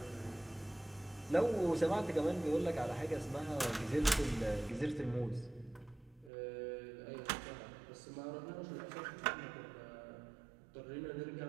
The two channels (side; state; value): left; drops out; at 6.3 s